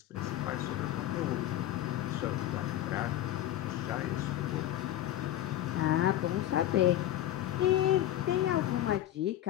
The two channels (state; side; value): quieter; right; 13.0 dB